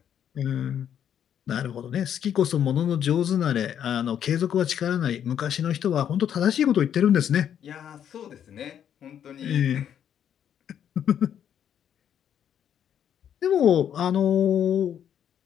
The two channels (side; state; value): right; quieter; 9.3 dB